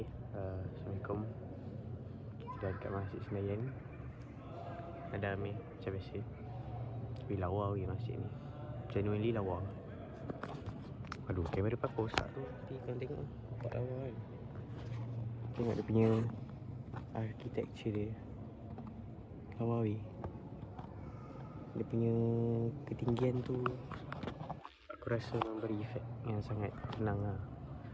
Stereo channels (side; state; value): both; identical; correlation 1.00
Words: Assalamualaikum. Kita dekat Masjid Senayan. Ada Amir macam biasa. Tapi lawa weh masjid ni. Genuinely lawa. Aduh, kamera pakai rosak tu. Tapi korang tengok lah, nampak lawa kan. Tengok dia punya architecture dia. Lawa weh. Dia punya ketinggian tu aku rasa memberi efek yang sangat tenang lah.